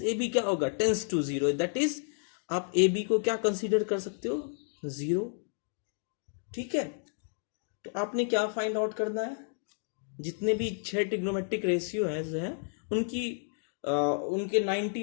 AB क्या होगा, टेंस टू 0। दैट इज आप AB को क्या कंसीडर कर सकते हो, 0। ठीक है। तो आपने क्या फाइंड आउट करना है, जितने भी 6 ट्रिग्नोमेट्रिक रेशियो हैं उनके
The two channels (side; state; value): right; silent; digital silence